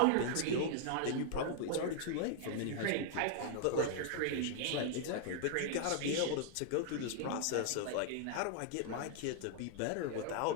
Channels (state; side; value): different; both; correlation 0.00